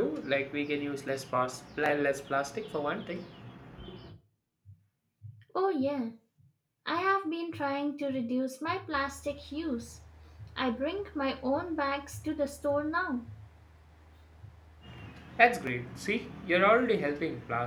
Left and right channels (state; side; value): identical; both; correlation 1.00